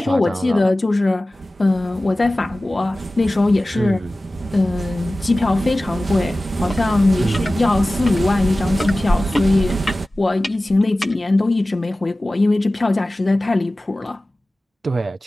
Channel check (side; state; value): both; normal; correlation 0.96